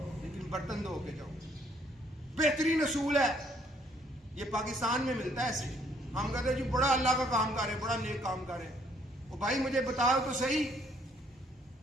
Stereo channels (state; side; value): normal; both; correlation 0.66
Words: لیکن برتن دھو کے جاؤ. بہترین اصول ہے. یہ پاکستان میں ملتا ہے ایسے. ہم کہتے ہیں جی بڑا اللہ کا کام کر رہے، بڑا نیک کام کر رہے. وہ بھائی مجھے بتاؤ تو صحیح،